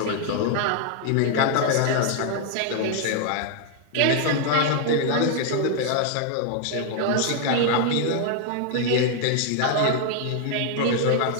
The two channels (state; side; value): different; both; correlation 0.00